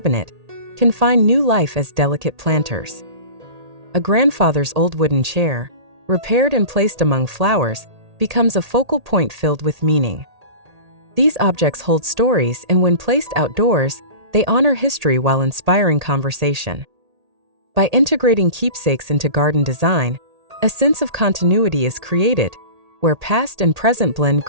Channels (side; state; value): left; late; 1.8 ms